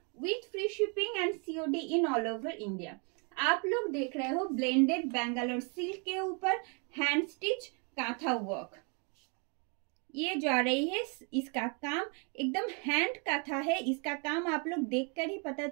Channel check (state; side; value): quieter; left; 35.7 dB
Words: with free shipping and COD in all over India. आप लोग देख रहे हो ब्लेंडेड बेंगलोर सिल्क के ऊपर हैंड स्टिच कांथा वर्क। ये जा रही है, इसका काम एकदम हैंड कांथा है। इसका काम आप लोग देखकर ही पता